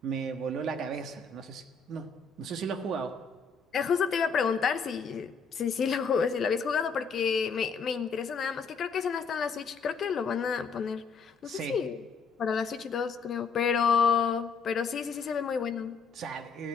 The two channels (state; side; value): quieter; right; 5.0 dB